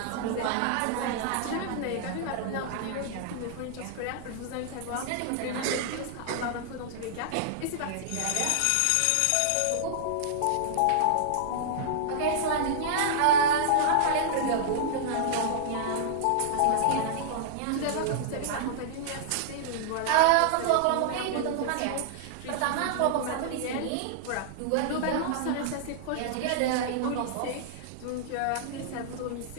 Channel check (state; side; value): different; both; correlation -0.01